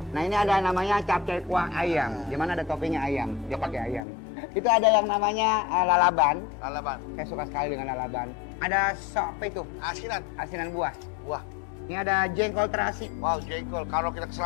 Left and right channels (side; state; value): right; drops out; at 4.0 s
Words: Nah ini ada namanya capcay kuah ayam. Di mana ada toppingnya ayam. Dia pakai ayam. Itu ada yang namanya lalaban. Lalaban. Saya suka sekali dengan lalaban. Ada sop itu, Asinan. asinan buah. Wah, Ini ada jengkol terasi. wow, jengkol. Kalau kita kesel